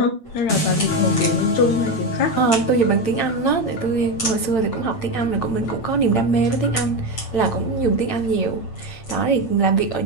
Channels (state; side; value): late; right; 8.9 ms